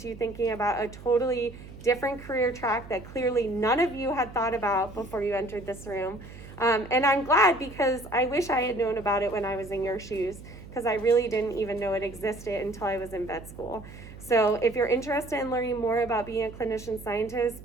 you thinking about a totally different career track that clearly none of you had thought about before you entered this room. And I'm glad, because I wish I had known about it when I was in your shoes, because I really didn't even know it existed until I was in vet school. So if you're interested in learning more about being a clinician scientist,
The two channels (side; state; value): right; noise; hum, 16 dB below the sound